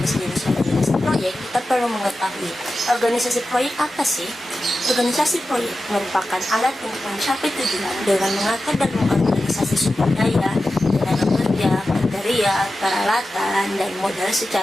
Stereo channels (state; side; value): normal; both; correlation 0.93